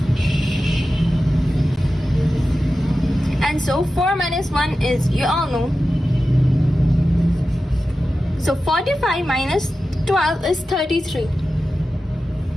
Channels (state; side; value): normal; both; correlation 0.93